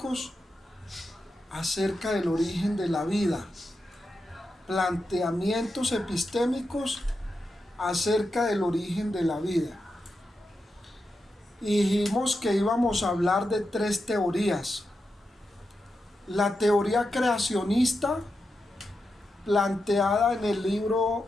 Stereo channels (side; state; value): both; normal; correlation 0.88